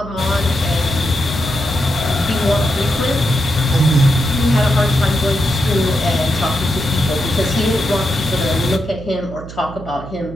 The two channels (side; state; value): right; noise; hum, 13 dB below the sound